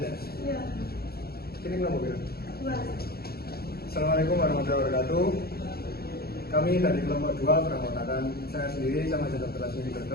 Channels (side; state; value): right; late; 0.45 ms